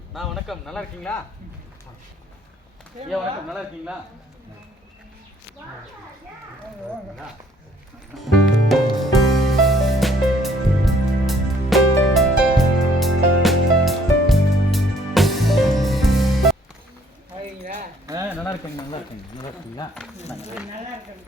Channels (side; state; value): both; normal; correlation 0.62